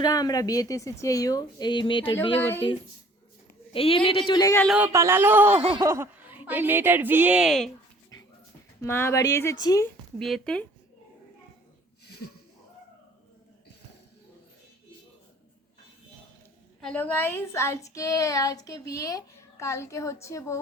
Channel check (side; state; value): both; normal; correlation 0.54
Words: আমরা বিয়েতে এসেছি। এই মেয়েটার বিয়ে করতে। এই মেয়েটা চলে গেল, পালালো। এই মেয়েটার বিয়ে, মা বাড়ি এসেছি বিয়েতে। হ্যালো গাইস, আজকে বিয়ে, কালকে হচ্ছে বউ